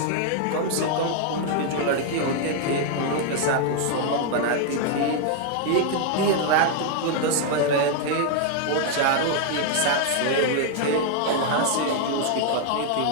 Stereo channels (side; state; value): both; different; correlation 0.00